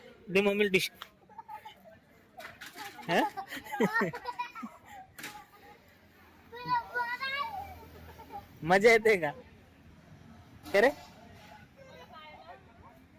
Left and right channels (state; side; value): identical; both; correlation 1.00